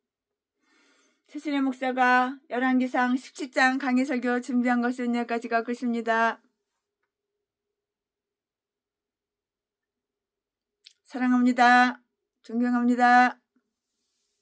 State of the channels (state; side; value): identical; both; correlation 1.00